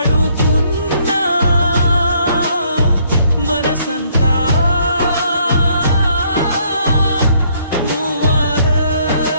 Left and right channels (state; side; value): inverted; both; correlation -0.66